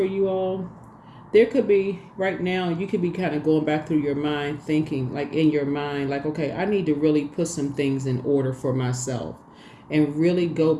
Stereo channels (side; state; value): both; identical; correlation 1.00